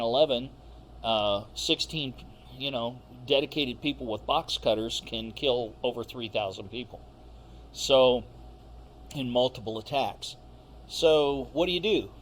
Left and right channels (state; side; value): identical; both; correlation 1.00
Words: 16, dedicated people with box cutters can kill over 3,000 people. So, in multiple attacks. So, what do?